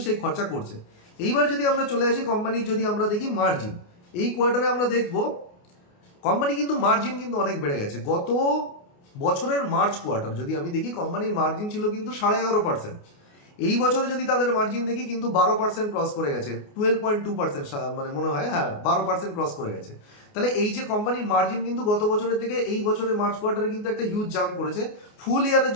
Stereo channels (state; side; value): late; right; 28 ms